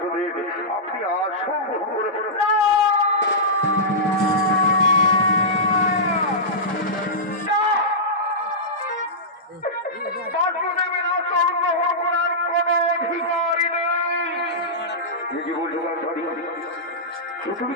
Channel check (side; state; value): both; normal; correlation -0.15